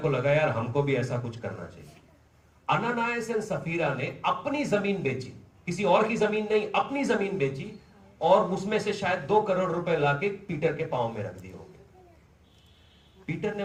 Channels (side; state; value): both; identical; correlation 1.00